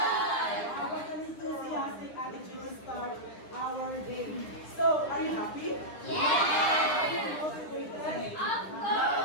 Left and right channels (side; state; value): right; late; 10 ms